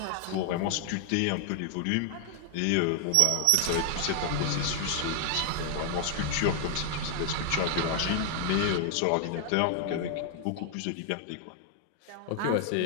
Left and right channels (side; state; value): both; different; correlation 0.00